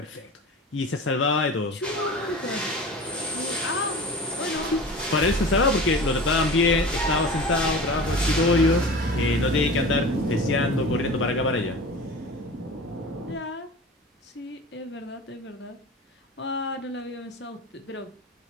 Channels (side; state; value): both; normal; correlation 0.35